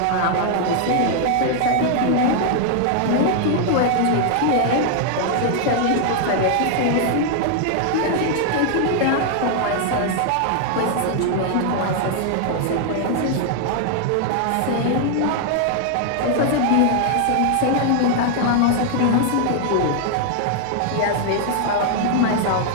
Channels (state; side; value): different; both; correlation 0.00